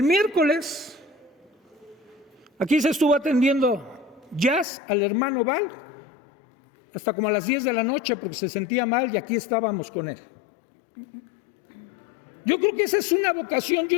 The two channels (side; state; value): right; drops out; at 4.7 s